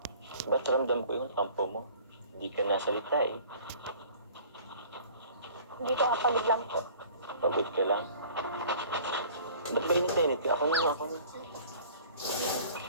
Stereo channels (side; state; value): both; inverted; correlation -0.48